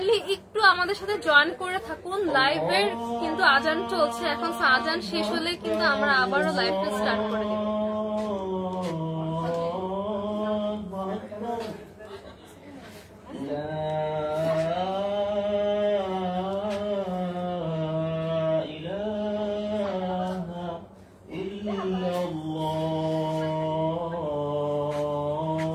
আমাদের সাথে জয়েন করে থাকুন। লাইভের কিন্তু আজান চলছে এখন, আজান শেষ হলে কিন্তু আমরা আবারও লাইভটা স্টার্ট করে দেব।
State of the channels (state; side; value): identical; both; correlation 1.00